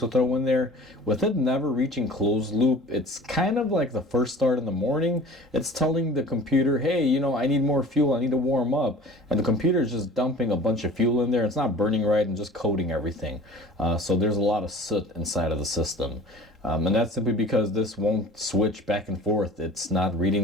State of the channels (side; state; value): both; normal; correlation 0.43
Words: throw in there, with it never reaching closed loop, it's kind of like the first start in the morning. It's telling the computer, hey, you know, I need more fuel, I need to warm up. And the computer is just dumping a bunch of fuel in there. It's not burning right and just coating everything. So there's a lot of soot inside of the system. And that's simply because this won't switch back and forth. It's not